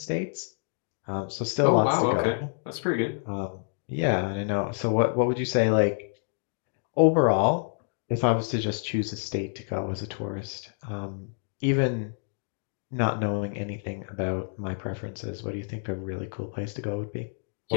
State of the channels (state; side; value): silent; right; digital silence